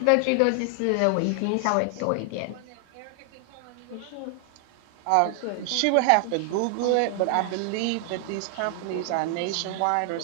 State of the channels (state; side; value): different; both; correlation 0.00